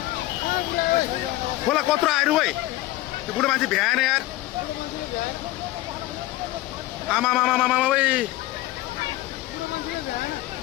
खोला कत्रो आयो है त्यो बुढो मान्छे भ्याएन यार आमा आमा आमा आमा ओए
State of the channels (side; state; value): right; quieter; 17.2 dB